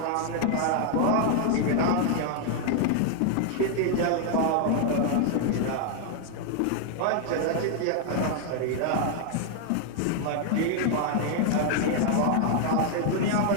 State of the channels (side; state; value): both; different; correlation 0.00